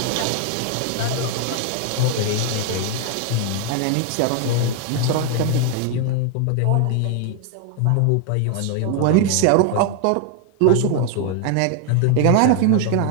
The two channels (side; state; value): both; different; correlation 0.00